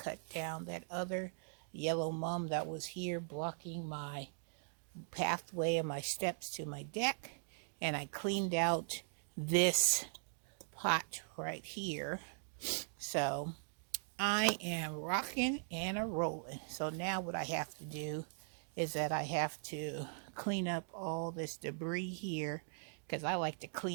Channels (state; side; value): silent; left; digital silence